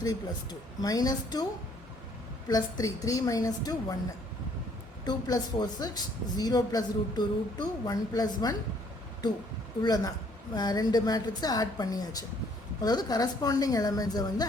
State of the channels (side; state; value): both; normal; correlation 0.63